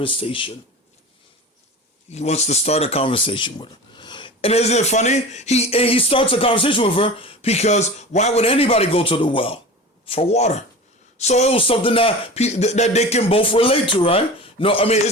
He wants to start a conversation with her. And isn't it funny? He starts a conversation with her because why would anybody go to the well? For water. So it was something that they can both relate to, right? No, I mean,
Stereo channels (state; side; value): normal; both; correlation 0.34